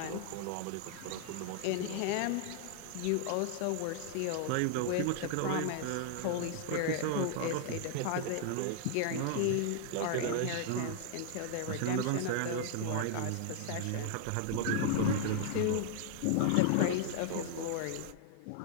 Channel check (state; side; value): different; both; correlation -0.01